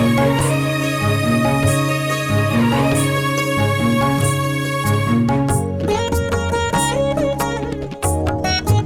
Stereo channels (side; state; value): both; identical; correlation 1.00